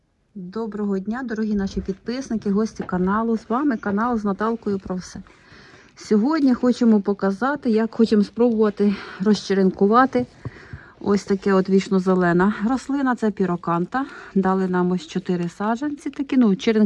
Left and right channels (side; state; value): both; identical; correlation 1.00